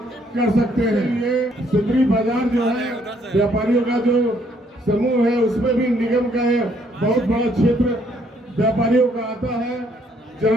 कर सकते हैं। ये सिंदरी बाजार जो है व्यापारियों का जो समूह है उसमें भी निगम का बहुत बड़ा क्षेत्र व्यापारियों का आता है,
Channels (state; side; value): normal; both; correlation 0.67